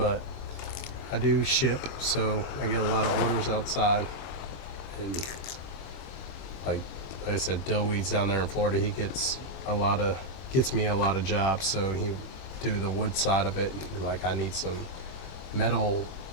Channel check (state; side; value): late; right; 23 ms